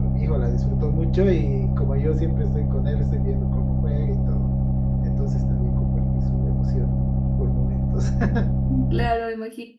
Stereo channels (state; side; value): identical; both; correlation 1.00